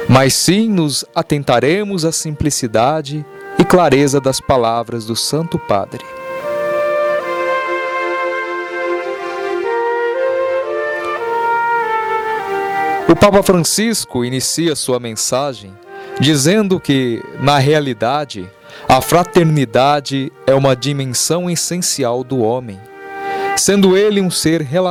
mas sim nos atentaremos à simplicidade e clareza das palavras do Santo Padre. O Papa Francisco inicia sua mensagem dizendo que, na realidade, a fraternidade é uma dimensão essencial do homem, sendo ele um ser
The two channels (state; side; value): identical; both; correlation 1.00